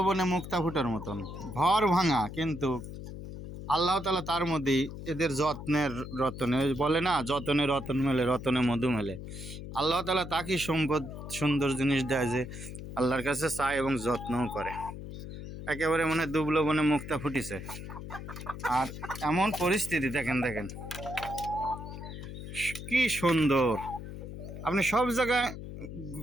মুক্তা ফুটার মতন ভর ভাঙা, কিন্তু আল্লাহ তাআলা তার মধ্যেই এদের যত্নের রতনে, বলে না যতনে রতন মেলে রতনে মধু মেলে। আল্লাহ তাআলা তাকে সম্পদ সুন্দর জিনিস দেয় যে আল্লাহর কাছে চায় এবং যত্নও করে। একেবারে মনে দুবলবনে মুক্তা ফুটিছে। আর এমন পরিস্থিতি দেখেন দেখেন কি সুন্দর। আপনি সব জায়গায়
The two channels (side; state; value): left; noise; hum, 10 dB below the sound